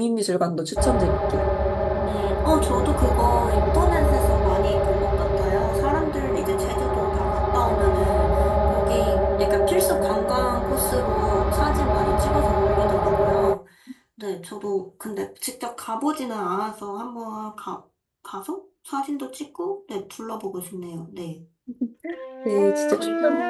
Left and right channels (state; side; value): identical; both; correlation 1.00